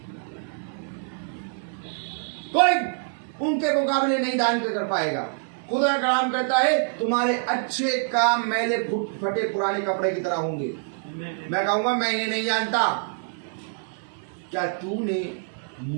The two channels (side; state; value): left; silent; 58 dB below the other